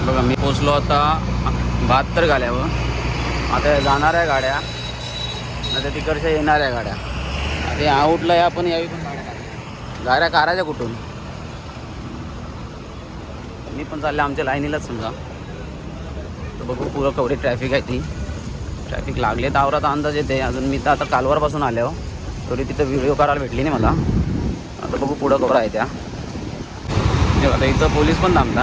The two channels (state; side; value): identical; both; correlation 1.00